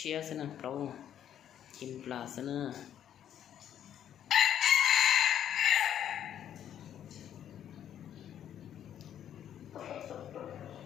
thế nè lâu chim là thế nè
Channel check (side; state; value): right; quieter; 10.1 dB